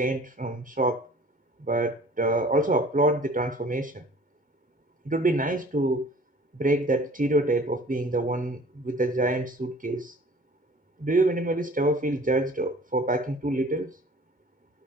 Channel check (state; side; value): normal; both; correlation 0.49